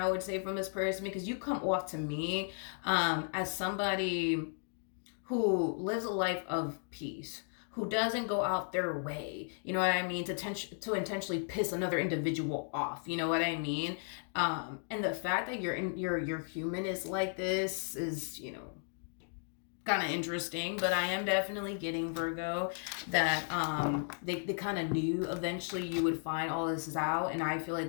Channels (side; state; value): right; silent; 54 dB below the other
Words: I would say, from this person, because you come off to me as somebody who lives a life of peace, who doesn't go out their way, you know what I mean, to intentionally piss another individual off, you know what I mean. And the fact that your human is like this is, kind of interesting, but I am definitely getting, Virgo, that they kind of knew eventually you would find all this out, and I feel like